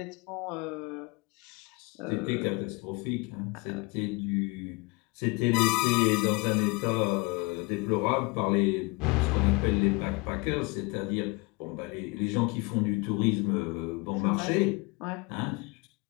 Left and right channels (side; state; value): right; quieter; 27.3 dB